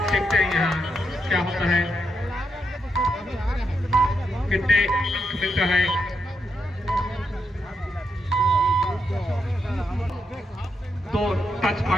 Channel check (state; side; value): normal; both; correlation 0.82